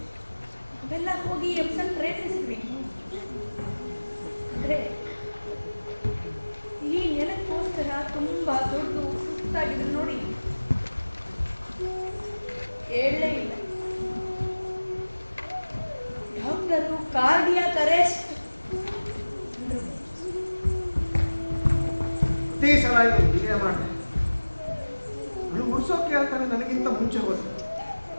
ಅವೆಲ್ಲ ಹೋಗಿ ಎಪ್ಸನ್ ಪ್ರಯತ್ನಿಸಿದ್ವಿ. ಅಂದ್ರೆ ಈ ನೆಲಕ್ಕೋಸ್ಕರ ತುಂಬಾ ದೊಡ್ಡ ಸುಸ್ತಾಗಿದ್ರು ನೋಡಿ, ಹೇಳಲೇ ಇಲ್ಲ. ಡಾಕ್ಟರು ಕಾರ್ಡಿಯಾಕ್ ಅರೆಸ್ಟ್ ಪ್ರತಿ ಸಲ ಹೀಗೆ ಮಾಡಿದೆ. ಅವಳು ಉಡ್ಸೋಕೆ ಹೇಳ್ತಾನೆ ನನಗಿಂತ ಮುಂಚೆ ಹೋದ.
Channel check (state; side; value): inverted; both; correlation -1.00